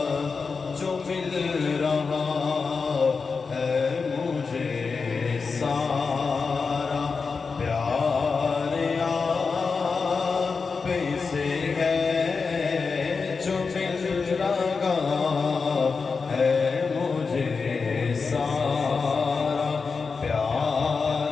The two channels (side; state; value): right; quieter; 4.9 dB